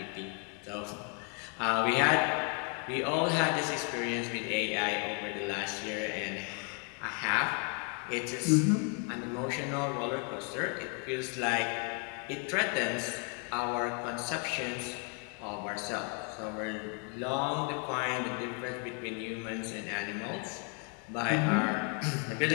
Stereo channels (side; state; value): right; quieter; 38.7 dB